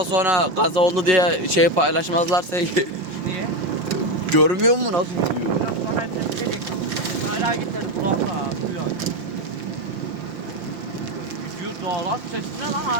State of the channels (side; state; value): left; late; 5.7 ms